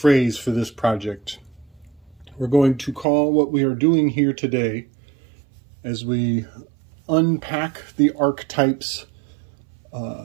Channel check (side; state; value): left; drops out; at 3.1 s